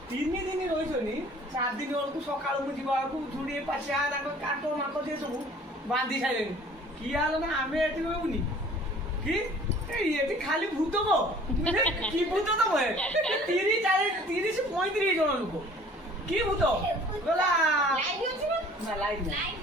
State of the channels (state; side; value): normal; both; correlation 0.51